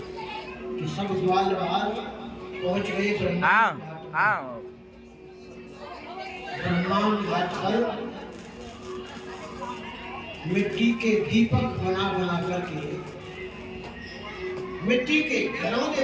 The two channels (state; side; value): identical; both; correlation 1.00